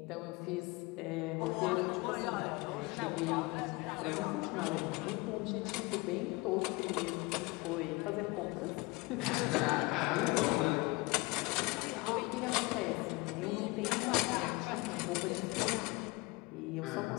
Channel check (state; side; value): quieter; right; 24.4 dB